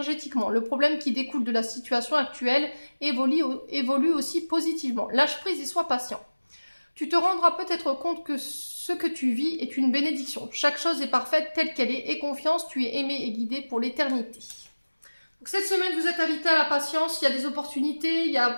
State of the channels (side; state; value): both; inverted; correlation -1.00